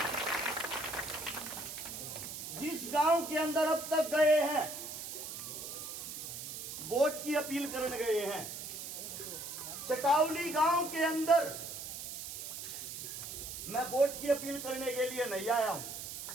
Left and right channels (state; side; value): noise; right; hiss, 8 dB below the sound